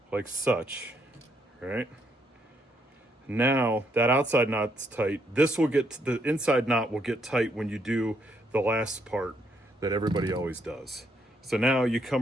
like such, right? Now that outside knot's tight. The inside knot will get tight when you do the last part that everybody always does. So now you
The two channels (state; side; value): normal; both; correlation 0.73